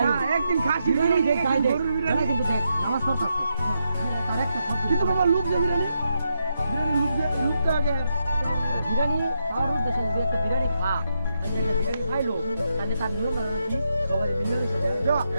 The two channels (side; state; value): both; inverted; correlation -0.83